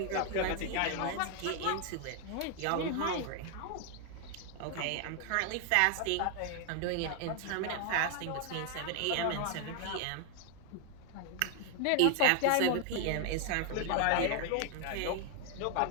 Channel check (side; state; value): both; different; correlation 0.00